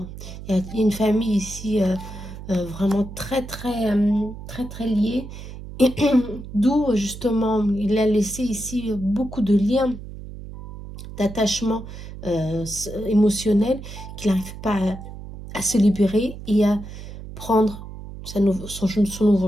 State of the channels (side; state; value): right; noise; hum, 12 dB below the sound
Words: Il y a une famille ici vraiment très liée. D'où justement, il a laissé ici beaucoup de liens, d'attachement émotionnel, qu'il n'arrive pas à se libérer et à prendre son